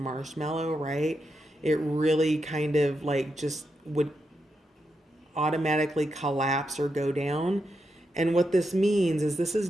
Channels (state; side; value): normal; both; correlation 0.84